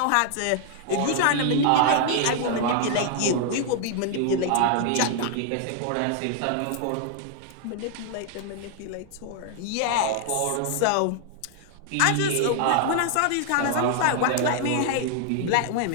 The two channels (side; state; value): both; different; correlation 0.00